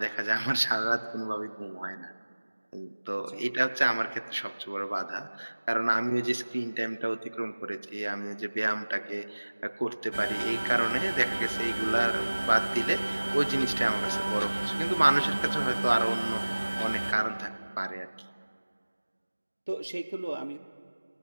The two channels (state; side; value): inverted; both; correlation -1.00